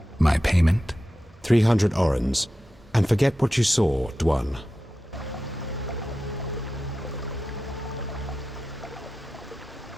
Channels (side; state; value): both; normal; correlation 0.92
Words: My payment? 300 orens. And forget what you saw, Dwan.